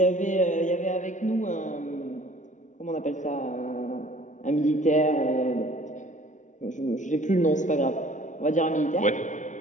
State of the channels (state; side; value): late; right; 0.36 ms